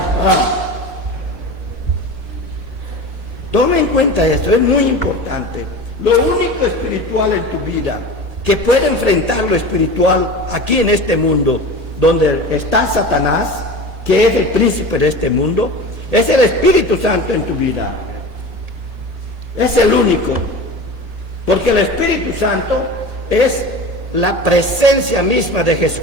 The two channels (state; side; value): late; left; 1.8 ms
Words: Toma en cuenta esto, es muy importante. Lo único espiritual en tu vida que puede enfrentar lo espiritual aquí en este mundo, donde está Satanás, que es el príncipe de este mundo, es el Espíritu Santo en tu vida. Es el único. Porque el Espíritu Santo es la presencia misma de